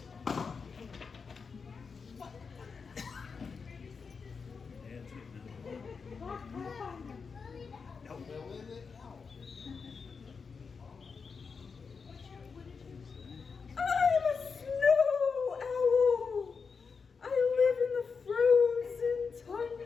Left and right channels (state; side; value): quieter; right; 5.3 dB